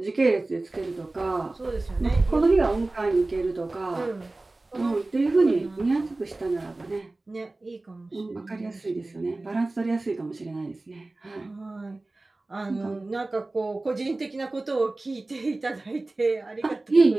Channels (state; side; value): quieter; left; 3.0 dB